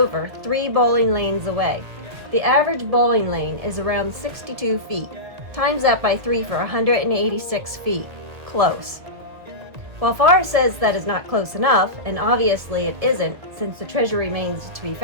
3 bowling lanes away. The average bowling lane is around 62 feet. Times that by 3 for 186 feet. Close. While Forrest says that is not close enough, and obviously it isn't since the treasure remains to be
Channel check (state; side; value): late; left; 2.0 ms